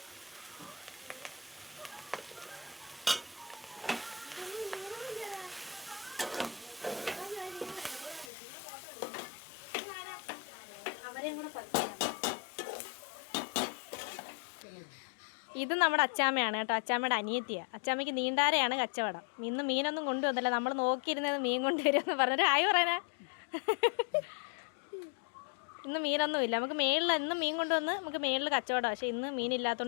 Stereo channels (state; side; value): drops out; right; at 8.3 s